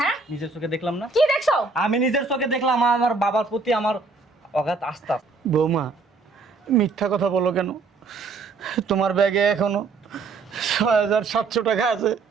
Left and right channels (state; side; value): quieter; left; 4.1 dB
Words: নিজের চোখে দেখলাম না? কি দেখছো? আমি নিজের চোখে দেখলাম আমার বাবার প্রতি আমার অগাধ আস্থা। বৌমা মিথ্যা কথা বলো কেন? তোমার ব্যাগে এখনো 6,700 টাকা আছে।